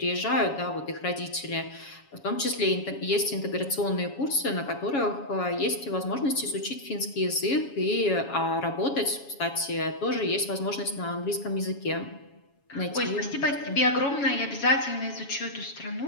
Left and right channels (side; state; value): right; late; 7.2 ms